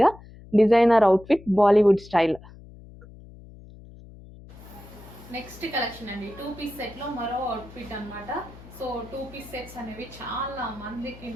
designer outfit, Bollywood style. Next collection అండి 2 పీస్ సెట్ లో మరో అవుట్ఫిట్ అన్నమాట. సో 2 పీస్ సెట్స్ అనేవి చాలా మందికి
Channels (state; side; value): noise; left; hum, 19 dB below the sound